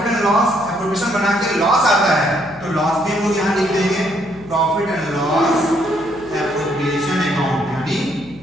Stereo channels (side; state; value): left; noise; hum, 21 dB below the sound